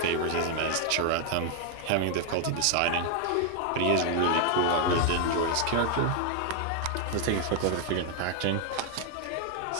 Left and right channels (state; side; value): different; both; correlation 0.00